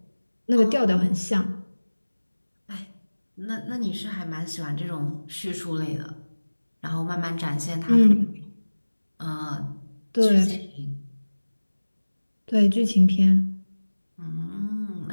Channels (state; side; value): inverted; both; correlation -1.00